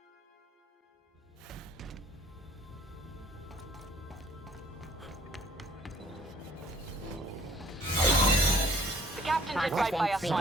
Captain did right by us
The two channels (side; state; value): both; normal; correlation 0.57